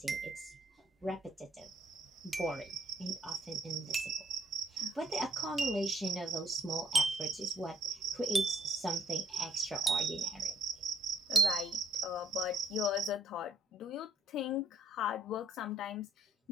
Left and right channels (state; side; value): normal; both; correlation 0.71